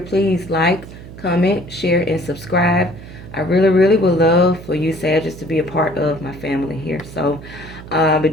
like, comment, share, and subscribe. I really, really would love for you Sagittarius to be a part of my family here. So I'll be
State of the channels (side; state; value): right; noise; hum, 15 dB below the sound